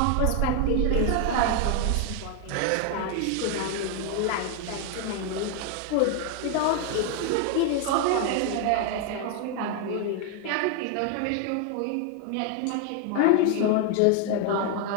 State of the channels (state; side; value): different; both; correlation 0.01